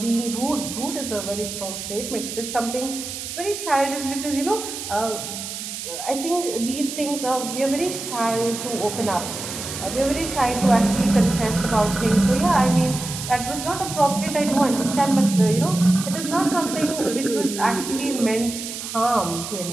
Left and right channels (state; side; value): noise; right; hiss, 7 dB below the sound